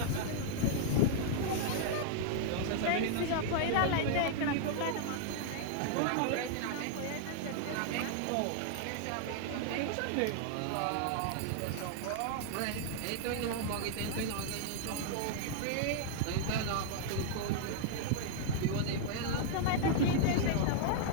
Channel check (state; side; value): different; both; correlation -0.01